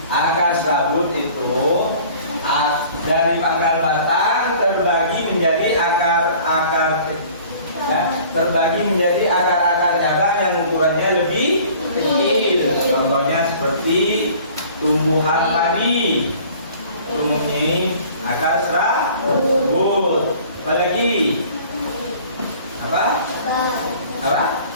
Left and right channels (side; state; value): both; inverted; correlation -0.49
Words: Akar serabut itu dari pangkal batang terbagi menjadi akar-akar cabang yang ukurannya lebih kecil. Contohnya seperti tumbuhan padi mempunyai akar serabut. Apalagi? Apa?